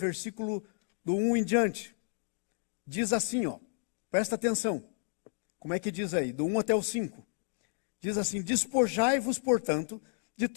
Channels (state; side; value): silent; right; digital silence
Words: do 1 em diante. Diz assim, presta atenção. Como é que diz aí? Do 1 até o 5. Diz assim, despojai-vos, portanto, de